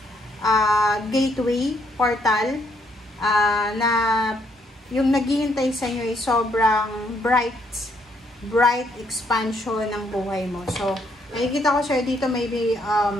gateway, portal, na yung naghihintay sa inyo ay sobrang bright expansion ng buhay mo. So, nakikita ko siya dito, maybe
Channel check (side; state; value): both; normal; correlation 0.72